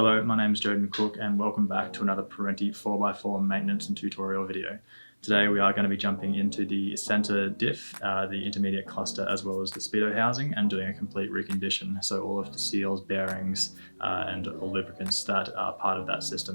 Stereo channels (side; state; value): both; inverted; correlation -1.00